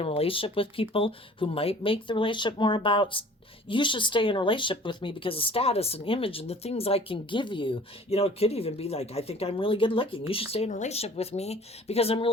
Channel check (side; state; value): both; normal; correlation 0.48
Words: a relationship with people who might make the relationship more about, you should stay in a relationship with me because of status and image and the things I can give you. You know, it could even be like, I think I'm really good looking. You should stay in a relationship with me because I'm